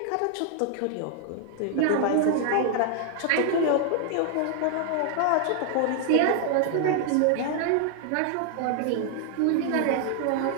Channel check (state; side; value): different; both; correlation 0.00